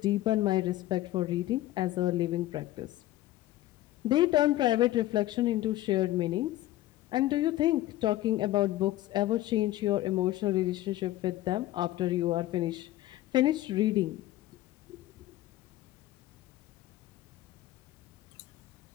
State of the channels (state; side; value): quieter; right; 15.6 dB